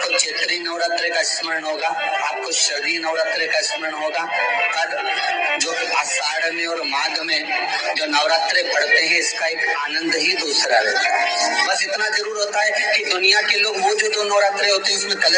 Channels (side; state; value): both; identical; correlation 1.00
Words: चैत्री नवरात्रि का स्मरण होगा, आपको शरदी नवरात्रि का स्मरण होगा, और जो आषाढ़ में और माघ में जो नवरात्रे पढ़ते हैं इसका एक आनंद ही दूसरा रहता है। बस इतना जरूर होता है कि दुनिया के लोग वो जो 2 नवरात्रे होते हैं उसमें